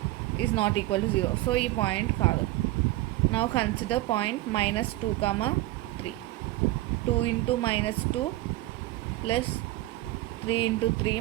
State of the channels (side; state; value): left; quieter; 17.4 dB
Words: is not equal to 0. So, this point kaadu. Now, consider point minus 2, 3. 2 into minus 2 plus 3 into 3